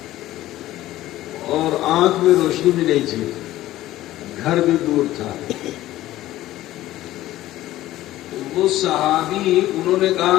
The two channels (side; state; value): right; quieter; 15.1 dB